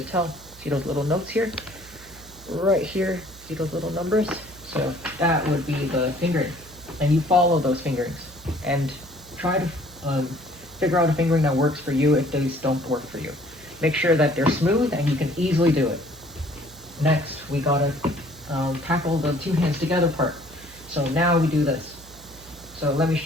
tell, see those little notes here? Right here, see those little numbers? So that would be the fingering, and you follow those fingerings, and try to figure out a fingering that works for you if these don't work for you. Make sure that they're smooth and you can easily do it. Next, we gotta tackle the 2 hands together part. So now we do this. So let me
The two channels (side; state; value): right; noise; hum, 22 dB below the sound